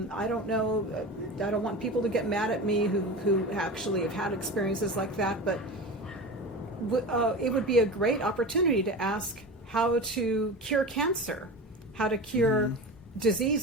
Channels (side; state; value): both; normal; correlation 0.29